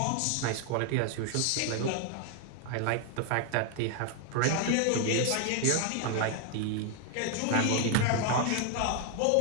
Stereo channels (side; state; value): both; different; correlation 0.00